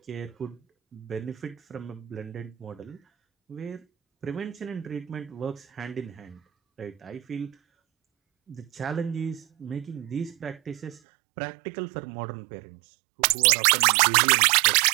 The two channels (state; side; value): drops out; left; at 11.0 s